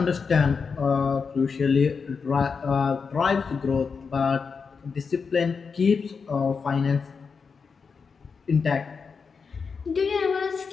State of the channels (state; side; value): quieter; right; 5.4 dB